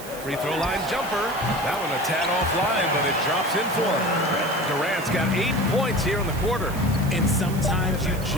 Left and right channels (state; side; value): noise; right; hiss, 15 dB below the sound